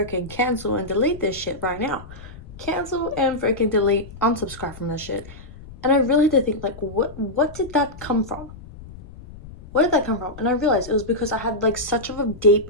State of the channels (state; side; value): noise; left; rumble, 16 dB below the sound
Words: cancel and delete this shit right now. Cancel and freaking delete, unsubscribe from this shit. And I really had to think, like, what did that come from? Where did that come from? And I realized it was because I had like such of a